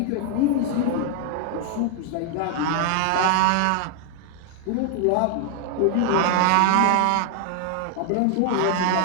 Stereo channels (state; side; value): different; both; correlation 0.00